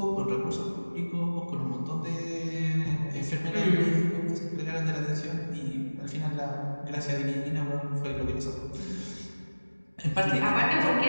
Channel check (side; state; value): both; inverted; correlation -1.00